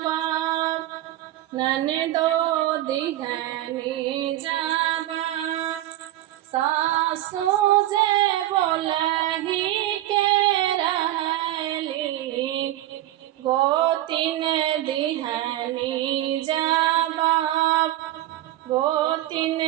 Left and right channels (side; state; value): left; quieter; 14.6 dB